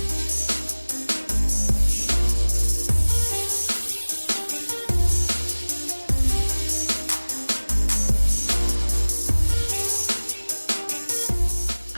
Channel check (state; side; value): inverted; both; correlation -1.00